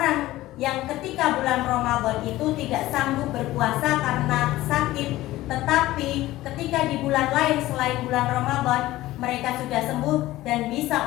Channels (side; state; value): right; quieter; 16.5 dB